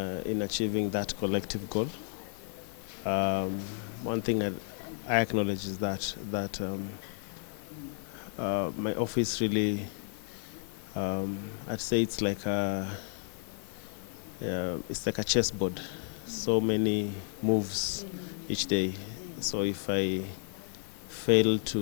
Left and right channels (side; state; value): right; silent; digital silence